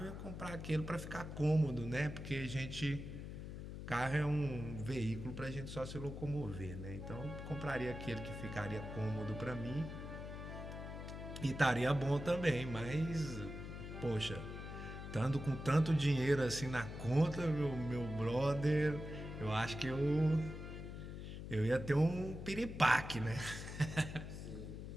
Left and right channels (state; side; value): noise; left; hum, 8 dB below the sound